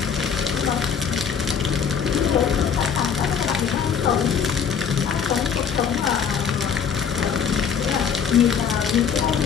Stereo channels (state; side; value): quieter; right; 7.1 dB